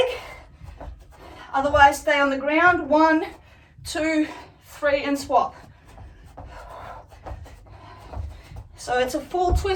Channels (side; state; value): both; identical; correlation 1.00